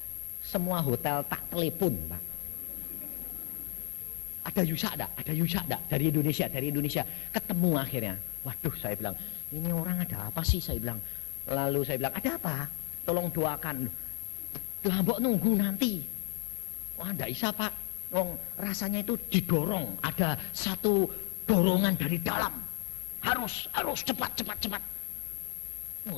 Semua hotel tak telepon Pak. Ada Yusa enggak? Dari Indonesia. Ketemu akhirnya. Waduh, saya bilang, ini orang ada apa sih? Saya bilang. Lalu saya bilang, ada apa? Tolong doakan. Lah mbok nunggu nanti. Wah, enggak bisa Pak. Rasanya itu didorong. Ada satu dorongan dari dalam. Harus cepat.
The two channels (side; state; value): right; silent; digital silence